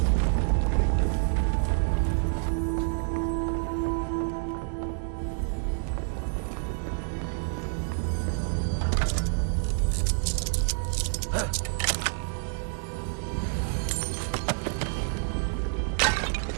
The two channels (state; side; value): silent; left; 59 dB below the other